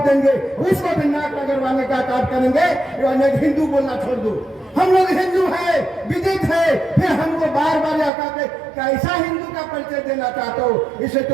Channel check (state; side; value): drops out; left; at 8.1 s